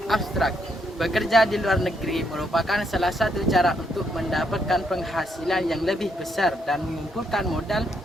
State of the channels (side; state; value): both; normal; correlation 0.75